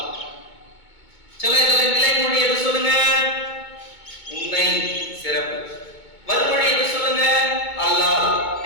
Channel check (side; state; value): right; late; 2.2 ms